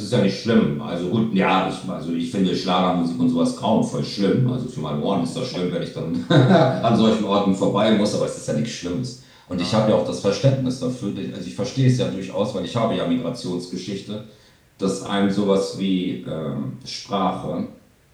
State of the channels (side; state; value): both; identical; correlation 1.00